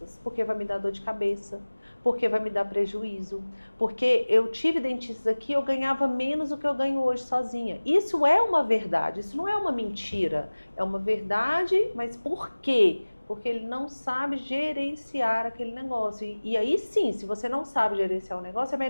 porque vai me dar dor de cabeça, porque vai me dar prejuízo, porque eu tive dentistas aqui, eu ganhava menos do que eu ganho hoje sozinha. Isso é uma verdade, isso não é uma mentira, é uma verdade, mas por quê? Porque ele não sabe gerenciar aquele negócio. E aí sim, se você não sabe gerenciar o negócio, é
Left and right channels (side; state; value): both; inverted; correlation -1.00